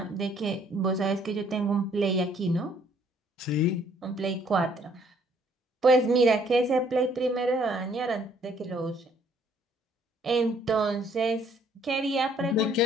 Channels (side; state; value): both; normal; correlation 0.63